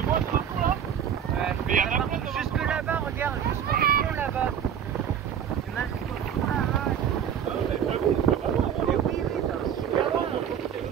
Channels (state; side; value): quieter; left; 8.8 dB